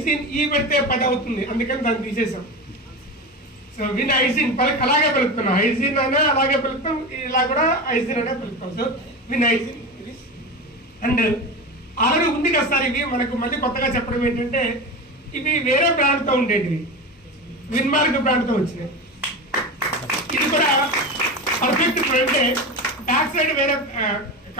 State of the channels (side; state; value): both; normal; correlation 0.24